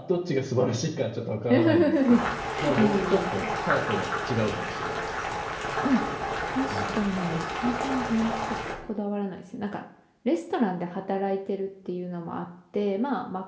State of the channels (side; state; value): both; identical; correlation 1.00